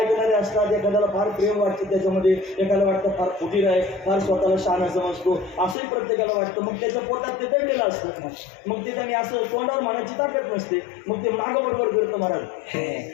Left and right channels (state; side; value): drops out; right; at 5.8 s